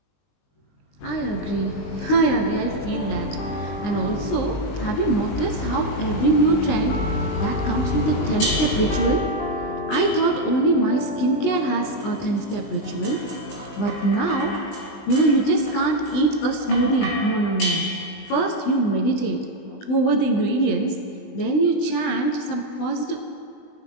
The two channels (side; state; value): right; late; 20 ms